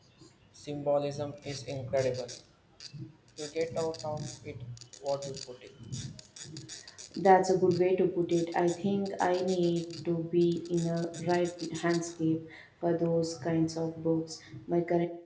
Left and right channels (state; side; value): identical; both; correlation 1.00